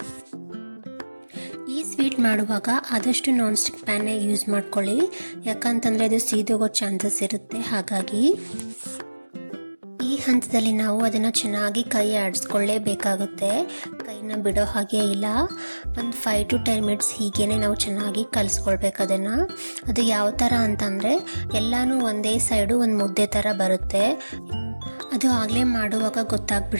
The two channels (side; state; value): both; inverted; correlation -1.00